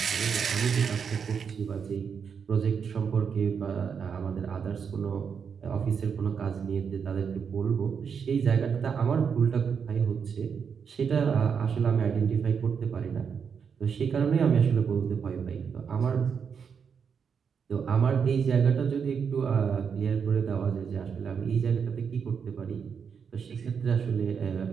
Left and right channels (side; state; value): left; quieter; 6.6 dB